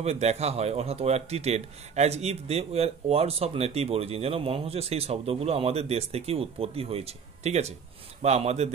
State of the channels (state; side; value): quieter; left; 6.3 dB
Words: দেখা হয়, অর্থাৎ were treated as if they were words of native origin, যেন মনে হচ্ছে সেই শব্দগুলো আমাদের দেশ থেকে উৎপত্তি হয়েছে, ঠিক আছে, বা আমাদের